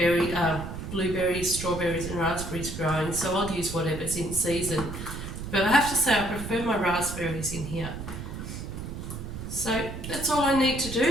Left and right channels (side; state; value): right; noise; rumble, 8 dB below the sound